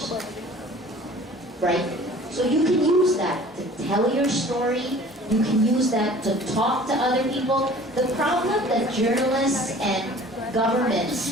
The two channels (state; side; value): normal; both; correlation 0.47